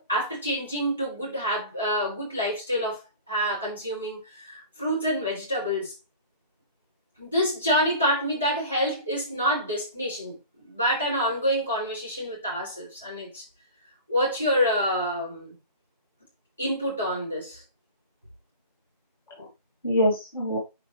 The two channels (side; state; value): both; inverted; correlation -0.39